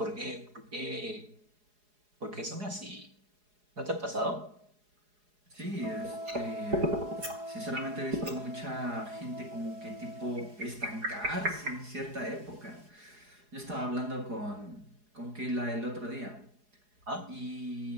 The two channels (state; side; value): late; left; 4.8 ms